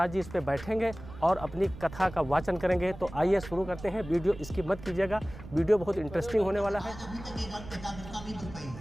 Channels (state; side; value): noise; right; rumble, 14 dB below the sound